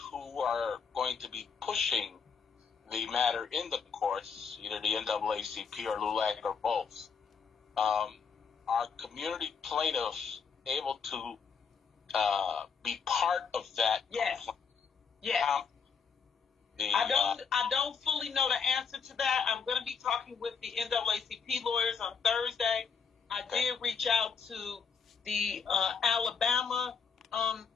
who are going to be pushing the matter in the courts, either the NAACP or LULAC or both, are community plaintiffs able to be part of that? Yes. Yes. I don't fully know the answer to that. I'm going to be talking with the NAACP lawyers on Thursday. I did reach out to the Alabama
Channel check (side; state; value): right; quieter; 6.0 dB